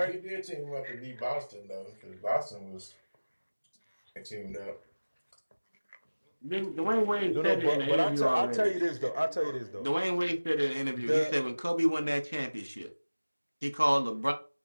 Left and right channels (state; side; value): inverted; both; correlation -1.00